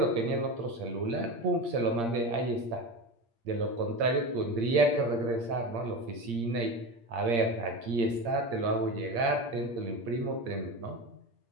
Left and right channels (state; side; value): late; left; 8.6 ms